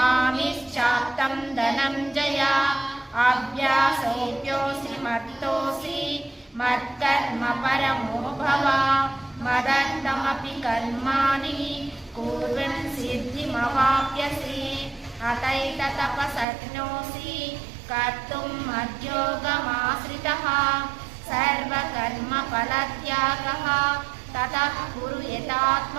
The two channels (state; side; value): drops out; left; at 16.4 s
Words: धनञ्जय अभ्यासोऽप्योऽसि मत्तोऽसि मत्कर्म परमो भव मदर्थमपि कर्माणि कुर्वन् सिद्धिमवाप्यसि अतैततपशक्नोषि कर्तुं मद्योगमाश्रितः सर्वकर्मफलत्यागः ततः कुरु